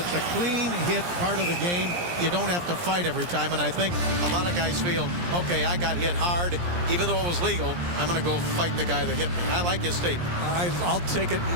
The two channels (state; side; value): late; left; 17 ms